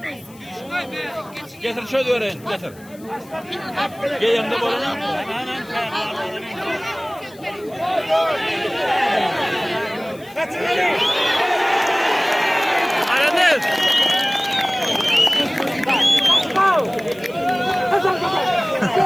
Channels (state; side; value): noise; left; hiss, 25 dB below the sound